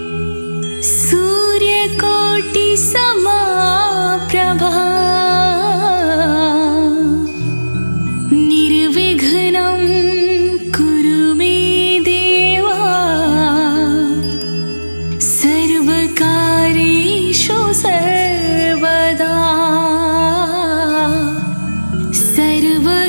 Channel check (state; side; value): inverted; both; correlation -1.00